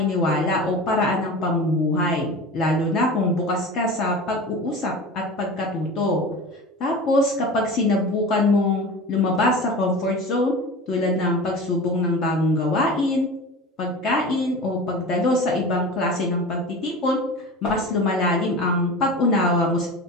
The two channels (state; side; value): normal; both; correlation 0.33